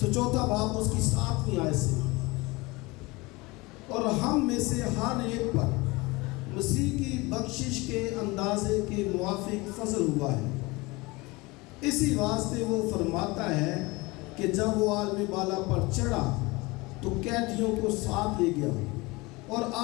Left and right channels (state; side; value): quieter; right; 23.7 dB